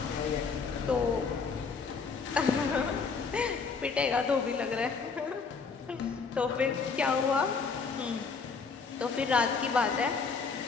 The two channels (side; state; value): right; quieter; 5.1 dB